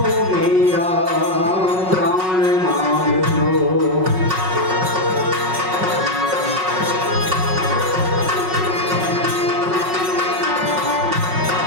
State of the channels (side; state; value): left; late; 5.4 ms